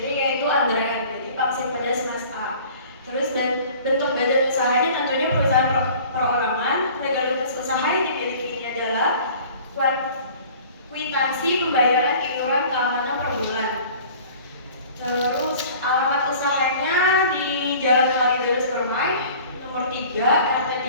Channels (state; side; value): inverted; both; correlation -0.46